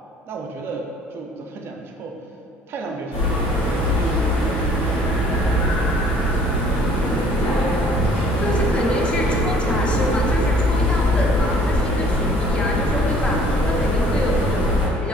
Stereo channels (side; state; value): both; normal; correlation 0.56